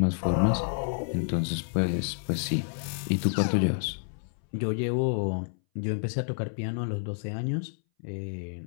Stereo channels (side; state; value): right; silent; 58 dB below the other